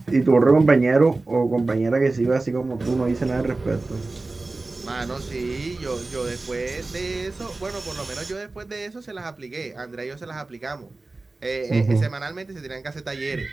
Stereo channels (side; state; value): left; quieter; 3.3 dB